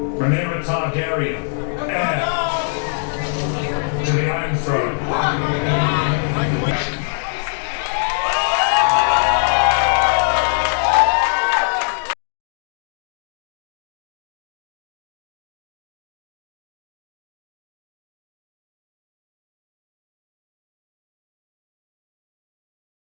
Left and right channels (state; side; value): silent; right; 64 dB below the other